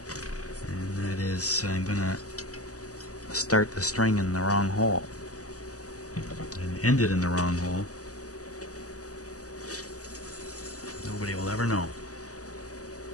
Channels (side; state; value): right; late; 0.66 ms